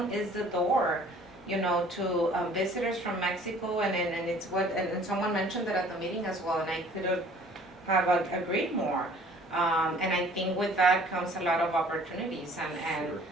is the door, to visitors from Mexico, and it's and someone mentioned that at the meeting as well, and I could have agreed more. And I think with that comes a lot of opportunities, and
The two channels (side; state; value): both; normal; correlation 0.53